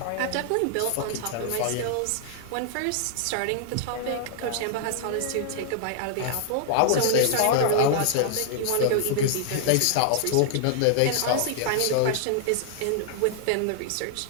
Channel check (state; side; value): different; both; correlation -0.01